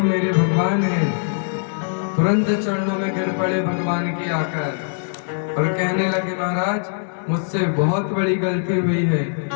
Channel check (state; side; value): silent; right; digital silence